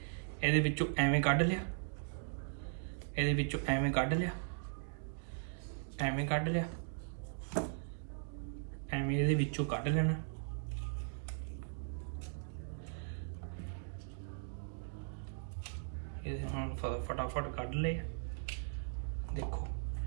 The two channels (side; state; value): left; silent; digital silence